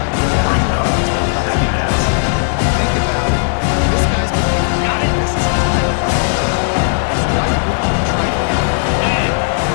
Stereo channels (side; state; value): right; silent; 58 dB below the other